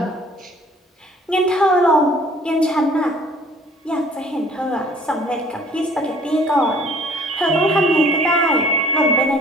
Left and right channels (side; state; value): both; normal; correlation 0.54